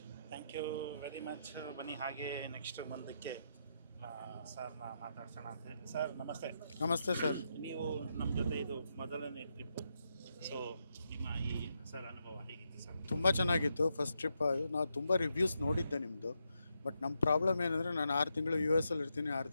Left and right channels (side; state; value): both; inverted; correlation -0.82